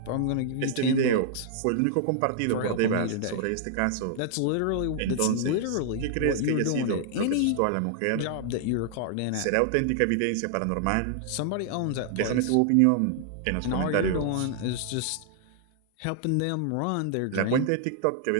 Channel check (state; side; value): different; both; correlation -0.01